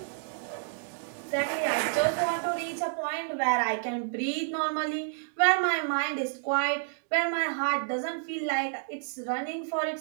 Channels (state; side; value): silent; left; digital silence